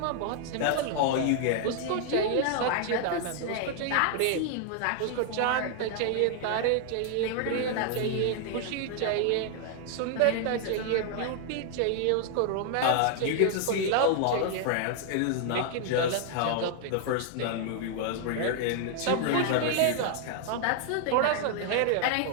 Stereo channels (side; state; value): both; different; correlation 0.00